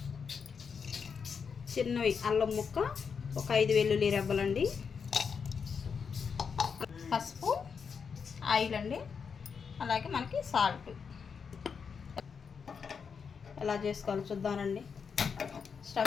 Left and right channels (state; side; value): quieter; right; 6.1 dB